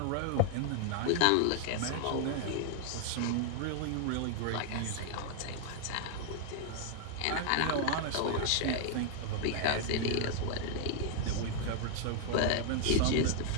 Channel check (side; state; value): both; different; correlation 0.00